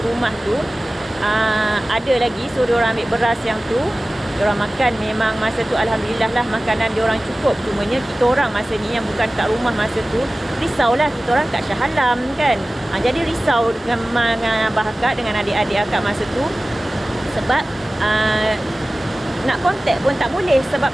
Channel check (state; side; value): normal; both; correlation 0.97